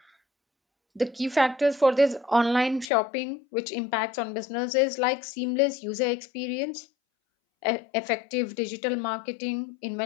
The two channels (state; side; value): drops out; right; at 2.9 s